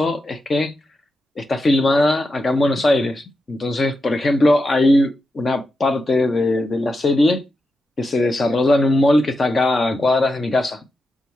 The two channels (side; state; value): both; normal; correlation 0.88